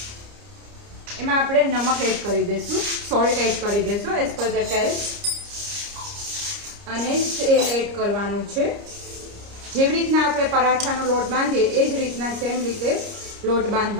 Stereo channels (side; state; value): left; late; 29 ms